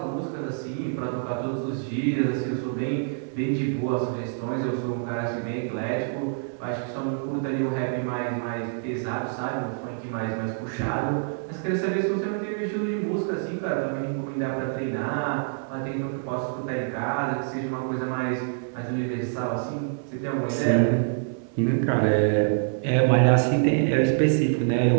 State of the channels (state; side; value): silent; left; 61 dB below the other